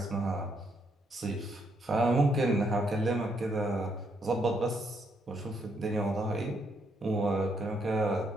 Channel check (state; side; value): normal; both; correlation 0.74